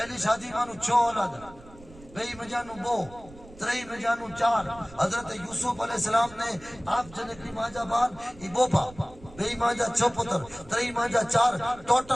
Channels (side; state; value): right; noise; rumble, 21 dB below the sound